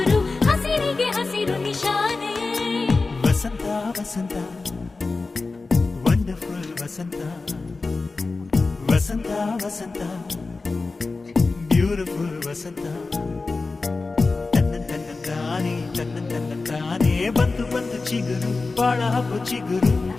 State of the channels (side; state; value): right; quieter; 3.8 dB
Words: ಹಸಿರಿಗೆ ಹಸಿರು ನಿಶಾನೆ ವಸಂತ ವಸಂತ ವಂಡರ್ಫುಲ್ ವಸಂತ ವಸಂತ ವಸಂತ ಬ್ಯೂಟಿಫುಲ್ ವಸಂತ ತನ್ನಂತಾನೆ ಬಂತು ಬಂತು ಚಿಗುರು ಬಾಳ ಹಬ್ಬ ಚಿಗುರು